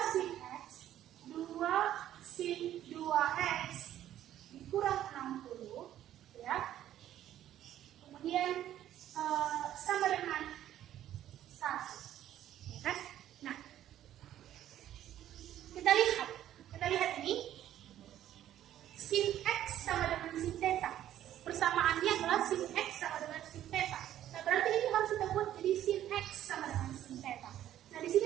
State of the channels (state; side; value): quieter; left; 12.0 dB